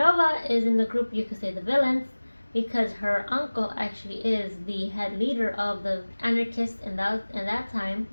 is in the group, you could say, the villains, because her uncle actually is the head leader of the anarchists in that time.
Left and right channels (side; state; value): both; inverted; correlation -1.00